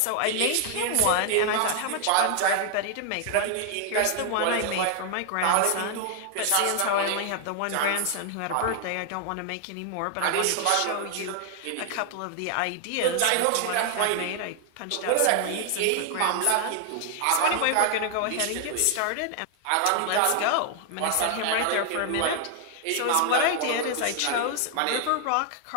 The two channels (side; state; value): both; different; correlation 0.00